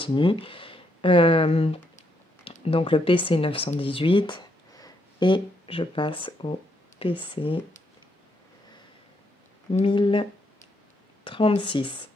Donc le PC 918 et je passe au PC 1036.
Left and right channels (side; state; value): both; normal; correlation 0.76